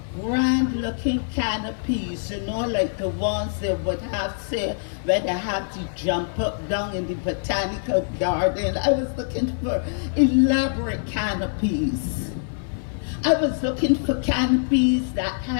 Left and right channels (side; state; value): right; silent; 59 dB below the other